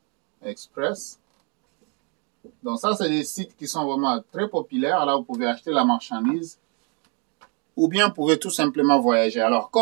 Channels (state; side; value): quieter; left; 36.0 dB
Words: Donc ça, c'est des sites qui sont vraiment très populaires. Là, vous pouvez acheter la marchandise. Ou bien, vous pouvez tout simplement voyager. Alors,